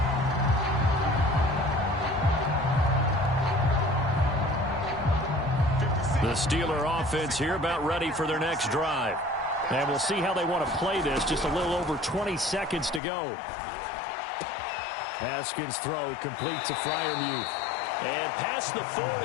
The Steeler offense here about ready for their next drive. And we'll see how they want to play this. Just a little over 20 seconds to go. Haskins' throw complete to Freiermuth. And past the 40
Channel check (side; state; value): right; drops out; at 13.0 s